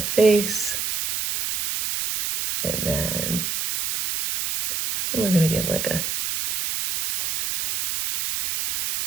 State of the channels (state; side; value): noise; right; hiss, 2 dB below the sound